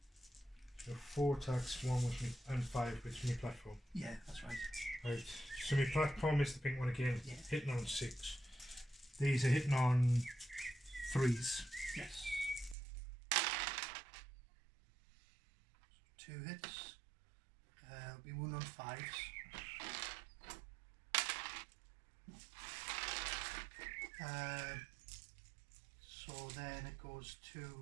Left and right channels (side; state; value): left; drops out; at 12.8 s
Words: So 4 attacks, 1 with me, and 5 with me platform. Yeah, that's right. Right. So my platform is the pink one again. Yeah. Hitting on 6. These are hitting on 3s. Yes. 2 hits. We won on 5s. So then it goes